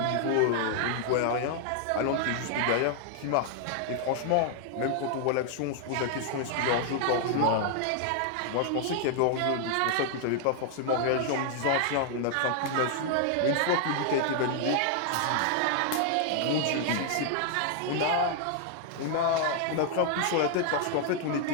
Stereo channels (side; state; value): both; different; correlation 0.00